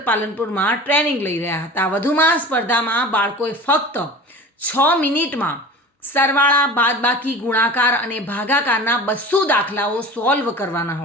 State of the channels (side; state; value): both; normal; correlation 0.37